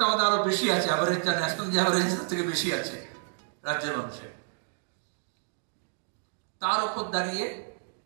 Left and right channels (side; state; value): left; silent; digital silence